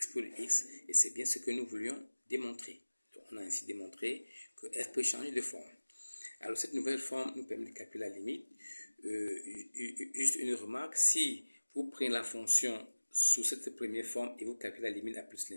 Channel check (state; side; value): inverted; both; correlation -1.00